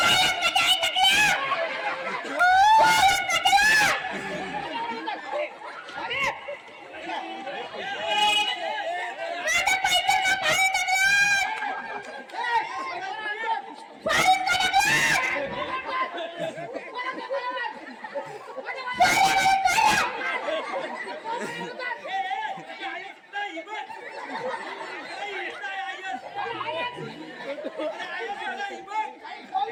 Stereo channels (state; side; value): identical; both; correlation 1.00